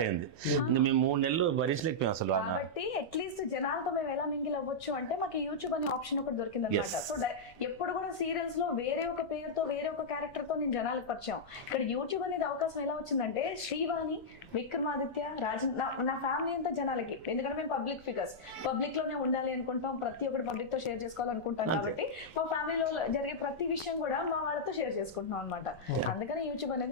అయింది. మేము 3 నెలలు భరించలేకపోయాం అసలు కాబట్టి అట్లీస్ట్ జనాలతో మేము ఎలా మింగిల్ అవ్వచ్చు అంటే మాకు యూట్యూబ్ అనే ఆప్షన్ ఒకటి దొరికింది అనమాట. సో ఎప్పుడు కూడా సీరియల్స్ లో వేరే ఒక పేరుతో వేరే ఒక క్యారెక్టర్ తో నేను జనాలకు పరిచయం. ఇక్కడ యూట్యూబ్ అనేది అవకాశం ఎలా వచ్చిందంటే శ్రీవాణి, విక్రమాదిత్య, రాజన్, నా ఫ్యామిలీ అంతా జనాలకి. ఎందుకంటే మేము పబ్లిక్ ఫిగర్స్, పబ్లిక్ లోనే ఉండాలి అనుకుంటాం, ప్రతి ఒక్కటి పబ్లిక్ తో షేర్ చేసుకోవాలనుకుంటాం. కాబట్టి మా ఫ్యామిలీలో జరిగే ప్రతి విషయం కూడా మా వాళ్ళతో షేర్ చేసుకుంటున్నాం అనమాట. అందుకని యూట్యూబ్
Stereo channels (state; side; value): noise; right; rumble, 26 dB below the sound